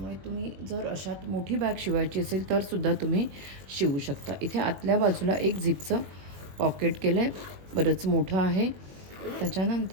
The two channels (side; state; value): left; late; 21 ms